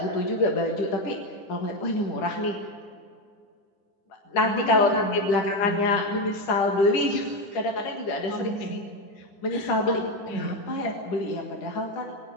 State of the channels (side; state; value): right; late; 10 ms